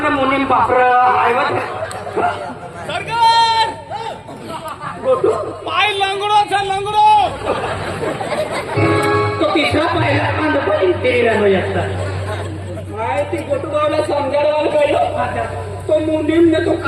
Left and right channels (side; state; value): both; identical; correlation 1.00